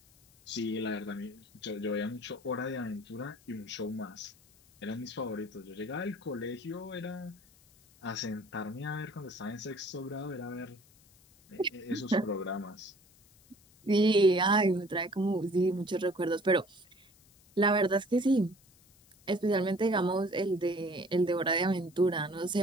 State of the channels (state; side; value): noise; left; hiss, 28 dB below the sound